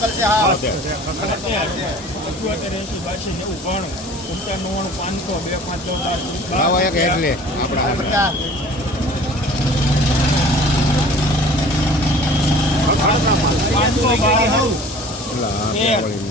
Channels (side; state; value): both; normal; correlation 0.46